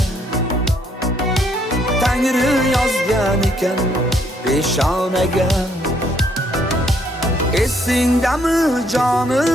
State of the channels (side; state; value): both; normal; correlation 0.69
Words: Tangri yozgan ekan peshonaga. Esingdami